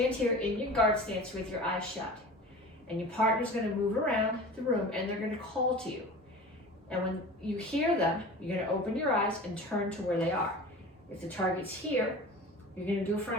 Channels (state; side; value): normal; both; correlation 0.36